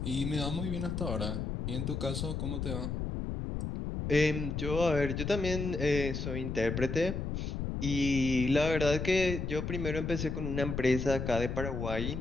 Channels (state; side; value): noise; left; rumble, 3 dB below the sound